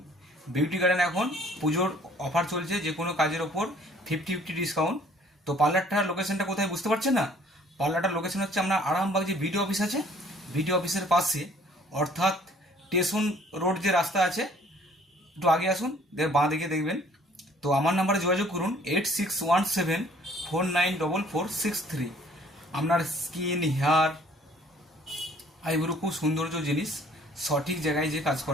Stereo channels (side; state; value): both; normal; correlation 0.57